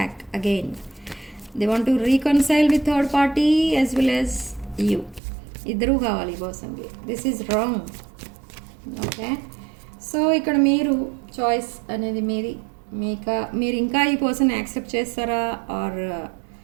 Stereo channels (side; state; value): left; drops out; at 5.2 s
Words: again. They want to reconcile with third party as well as you. ఇద్దరూ కావాలి ఈ పర్సన్కి. This is wrong. Okay, so ఇక్కడ మీరు choice అనేది మీది. మీరు ఇంకా ఈ పర్సన్ యాక్సెప్ట్ చేస్తారా ఆర్